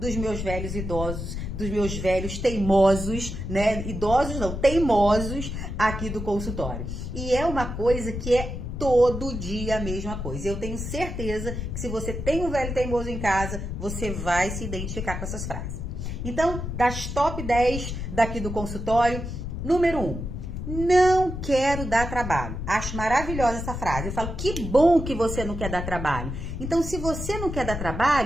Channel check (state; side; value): noise; left; rumble, 5 dB below the sound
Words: meus velhos idosos, dos meus velhos teimosos, né? Idosos não, teimosos aqui do consultório. E é uma coisa que é todo dia a mesma coisa. Eu tenho certeza que se você tem um velho teimoso em casa, você vai se identificar com essas frases. Então, das top 10 daqui do consultório, número 1. Não quero dar trabalho. Acho maravilhosa essa frase. Eu falo, que bom que você não quer dar trabalho. Então, se você não quer dar